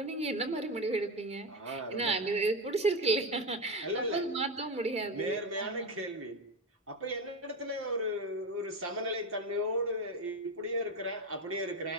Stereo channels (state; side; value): normal; both; correlation 0.16